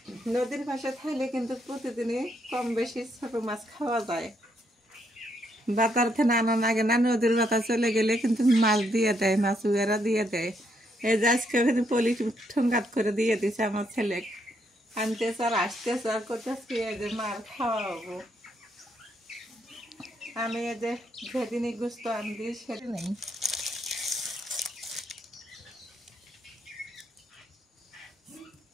নদীর পাশে থাকলে কিন্তু প্রতিদিনই কম বেশি ছোট মাছ খাওয়া যায়। বাতার থেকে আনা লাগে না, নদীর বাতা চলে গেলে কিন্তু মাছ দিয়ে দেয়, মাছ উয়েরা দিয়ে দেয়। এই যে আজকে পলি ঠোঙ্গাত করে দিয়ে দিছে আমার ছেলে। আনতেছে আর আসতেছে আর করতেছি এই যে মার খাওয়াবো। আমি এই যে যেদিনই গুস্ত আনবি সেদিনই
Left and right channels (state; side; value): normal; both; correlation 0.75